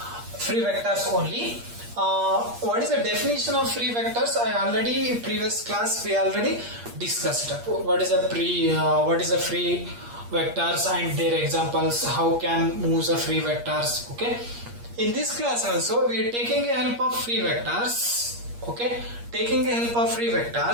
free vectors only. What is the definition of free vectors? Previous class we already discussed. What is a free vectors and their examples? How can move the free vectors? Okay. In this class also we are taking a help of free vectors. Okay. Taking a help of free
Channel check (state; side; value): late; left; 8.5 ms